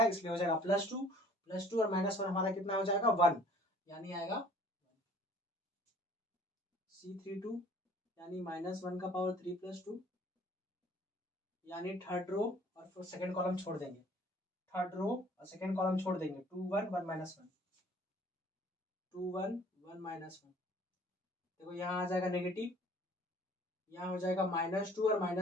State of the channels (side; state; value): both; normal; correlation 0.53